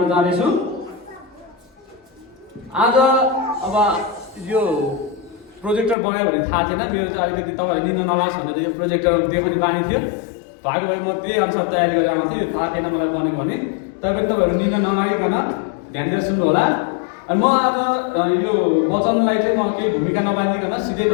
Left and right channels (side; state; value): right; drops out; at 6.0 s